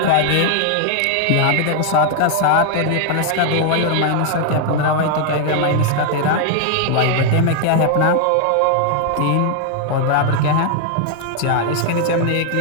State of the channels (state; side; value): different; both; correlation 0.00